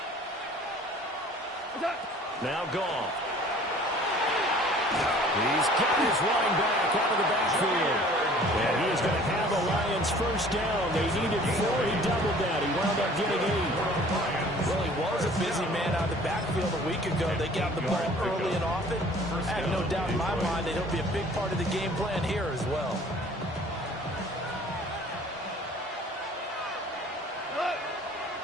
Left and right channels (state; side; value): normal; both; correlation 0.51